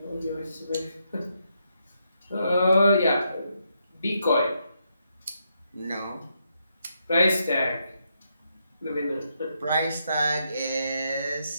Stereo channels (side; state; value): both; inverted; correlation -0.80